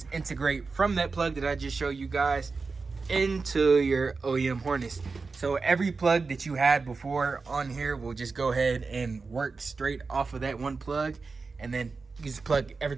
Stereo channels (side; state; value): left; quieter; 4.3 dB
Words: integrate from that plug that I just showed you guys into your OEM harness. So every plug that you had before on here will just go ahead and work straight off of that one plug, and then you just plug